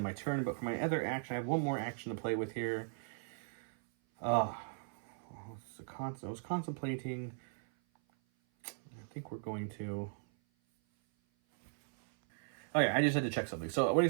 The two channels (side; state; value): left; silent; 53 dB below the other